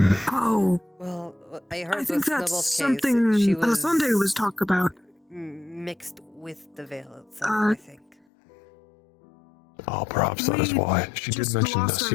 Well, I heard I think that's Snowball's something case, she was Sunday was talk about. mixed with the Vale itself, I think. Oh, perhaps that is why. She did mention lost this,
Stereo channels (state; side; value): drops out; right; at 8.2 s